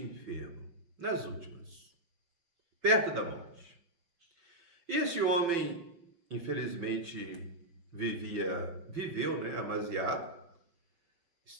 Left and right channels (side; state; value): left; late; 5.9 ms